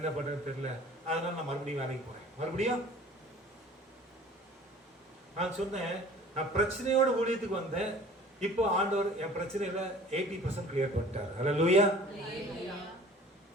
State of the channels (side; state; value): both; normal; correlation 0.47